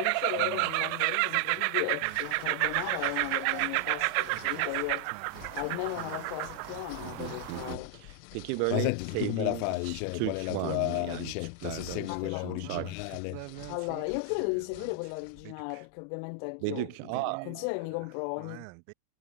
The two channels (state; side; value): different; both; correlation 0.00